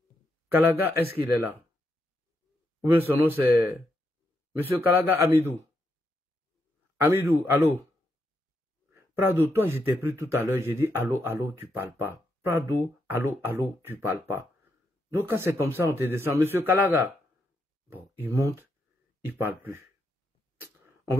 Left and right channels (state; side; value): normal; both; correlation 0.81